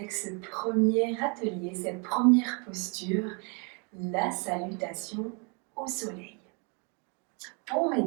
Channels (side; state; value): left; quieter; 34.5 dB